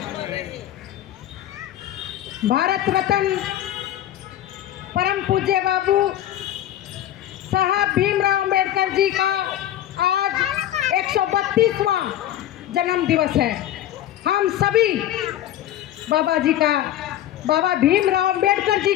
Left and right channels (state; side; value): quieter; right; 12.4 dB